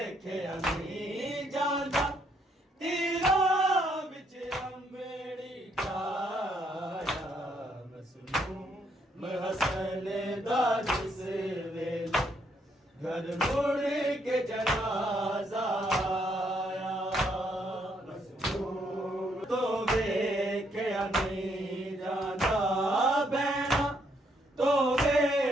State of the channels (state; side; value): normal; both; correlation 0.72